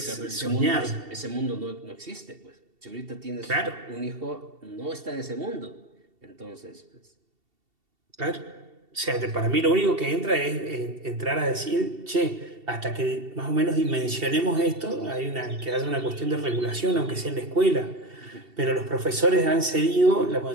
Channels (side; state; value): left; late; 2.7 ms